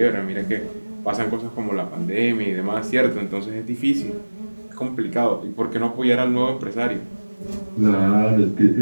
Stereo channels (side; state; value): both; inverted; correlation -1.00